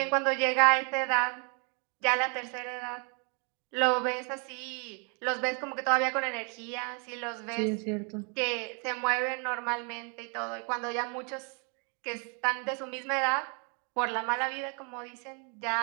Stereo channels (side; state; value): left; quieter; 37.3 dB